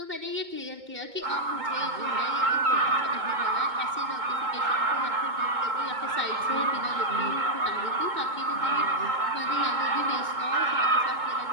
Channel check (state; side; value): late; left; 2.2 ms